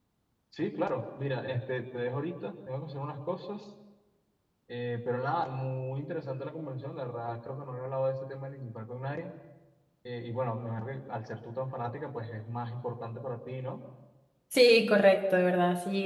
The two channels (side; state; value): both; identical; correlation 1.00